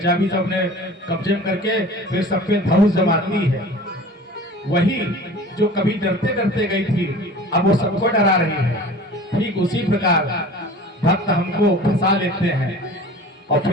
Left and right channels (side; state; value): both; normal; correlation 0.41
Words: सब अपने कब्जे में करके फिर सबके धौस जमाती है। वही जो कभी डरते डरते गई थी, अब वो सबको डरा रही है। ठीक उसी प्रकार भक्त हमको फंसा लेते हैं और